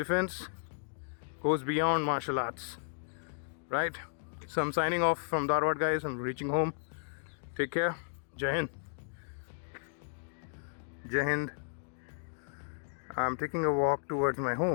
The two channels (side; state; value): right; silent; digital silence